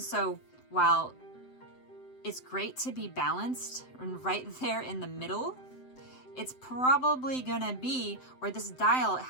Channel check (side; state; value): right; late; 7.8 ms